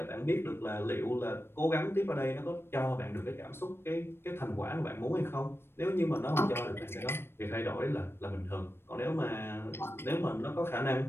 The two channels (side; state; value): right; late; 0.12 ms